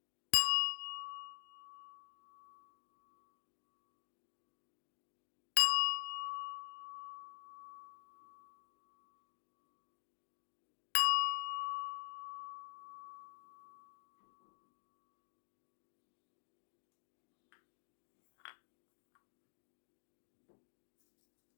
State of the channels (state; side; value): silent; right; digital silence